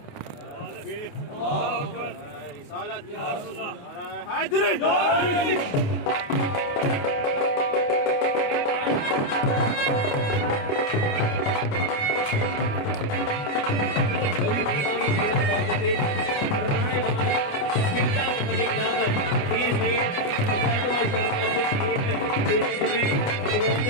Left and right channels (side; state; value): right; late; 28 ms